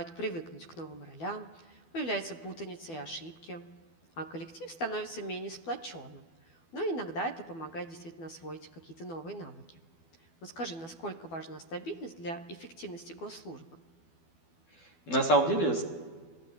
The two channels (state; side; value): late; right; 12 ms